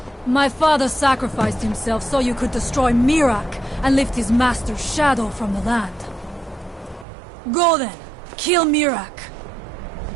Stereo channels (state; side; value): drops out; left; at 7.1 s